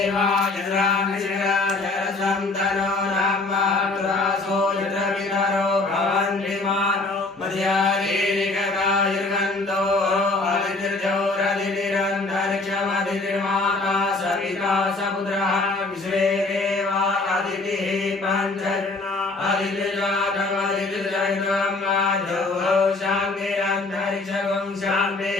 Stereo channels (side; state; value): right; quieter; 3.3 dB